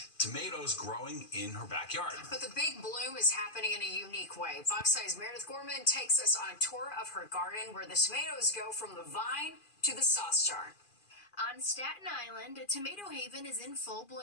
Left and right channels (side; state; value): right; late; 2.4 ms